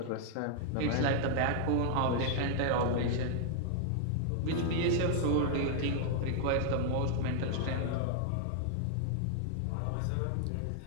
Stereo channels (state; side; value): different; both; correlation 0.00